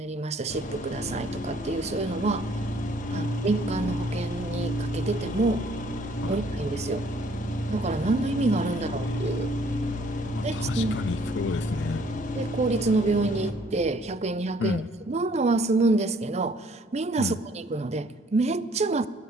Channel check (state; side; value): normal; both; correlation 0.61